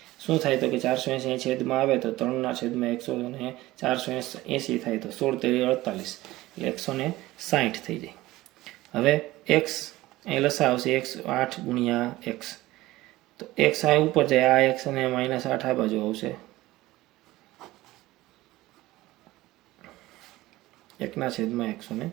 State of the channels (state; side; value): quieter; left; 17.8 dB